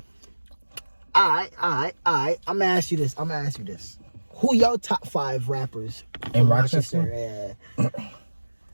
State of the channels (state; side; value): inverted; both; correlation -1.00